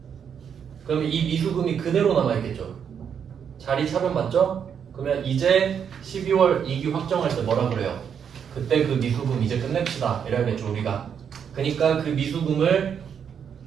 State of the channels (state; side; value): quieter; left; 7.7 dB